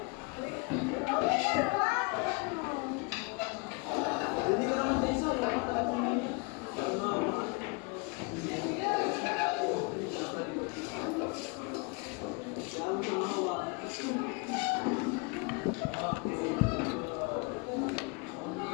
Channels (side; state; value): right; quieter; 30.1 dB